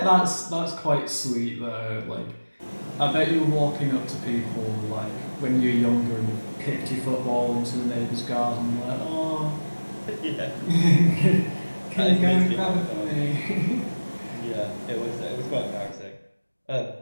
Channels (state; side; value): inverted; both; correlation -1.00